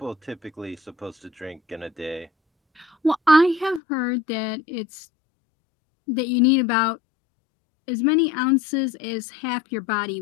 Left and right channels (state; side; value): drops out; right; at 3.8 s